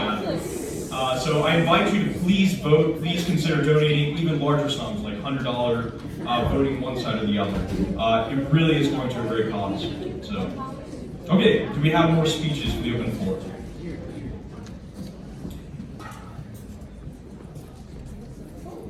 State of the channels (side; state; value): both; identical; correlation 1.00